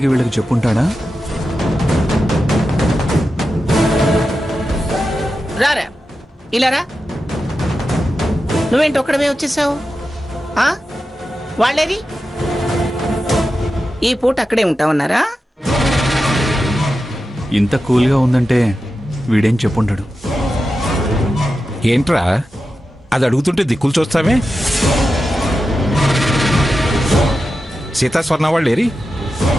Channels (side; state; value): both; normal; correlation 0.91